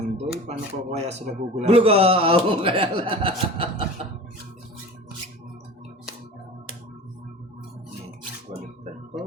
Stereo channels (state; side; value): normal; both; correlation 0.36